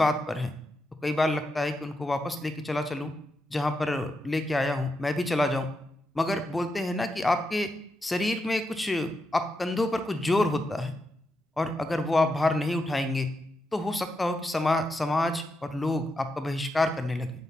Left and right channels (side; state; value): both; normal; correlation 0.85